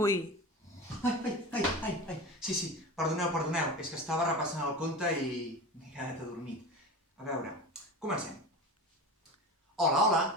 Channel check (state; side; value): normal; both; correlation 0.29